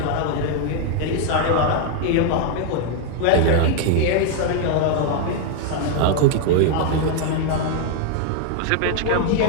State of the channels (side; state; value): both; different; correlation 0.00